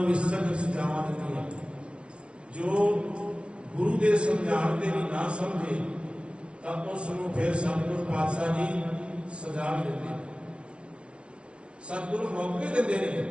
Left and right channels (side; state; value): left; late; 0.059 ms